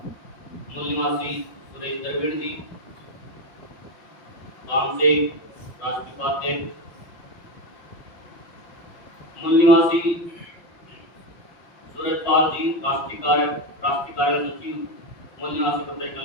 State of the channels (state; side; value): late; right; 5.8 ms